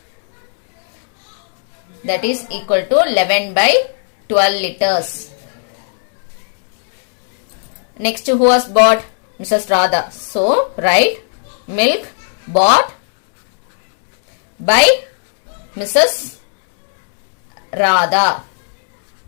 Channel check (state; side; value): silent; right; digital silence